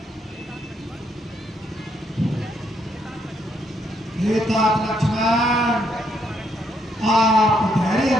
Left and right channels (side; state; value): both; normal; correlation 0.74